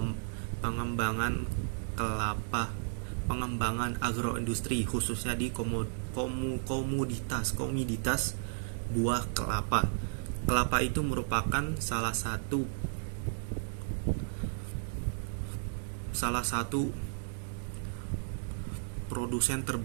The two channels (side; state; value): left; silent; digital silence